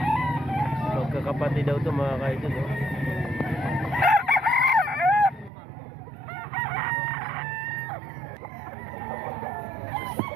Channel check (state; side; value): drops out; left; at 5.5 s